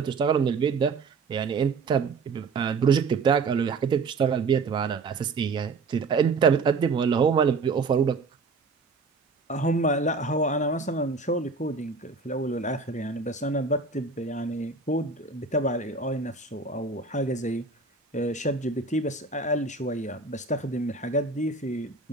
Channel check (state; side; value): quieter; left; 4.3 dB